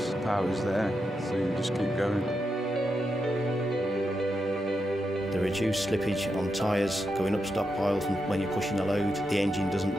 The power's there, so you just keep going. The reduced slippage on tyres going up stockpiles and when you're pushing a load, the engine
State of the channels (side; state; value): both; normal; correlation 0.86